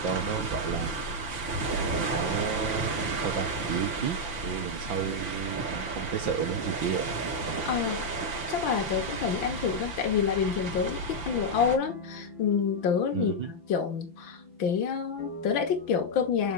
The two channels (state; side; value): late; right; 5.9 ms